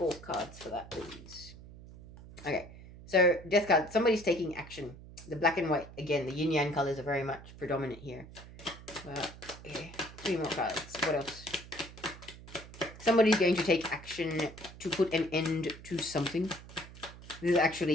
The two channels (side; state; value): right; noise; hum, 17 dB below the sound